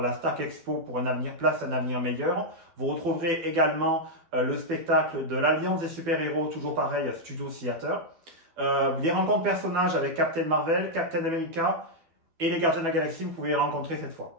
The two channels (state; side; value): late; left; 12 ms